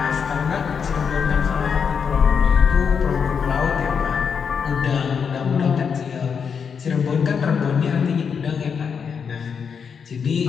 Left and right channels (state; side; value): quieter; right; 6.5 dB